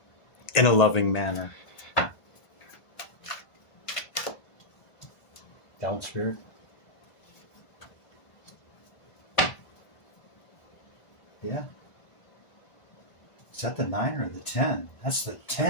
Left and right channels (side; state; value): right; late; 1.5 ms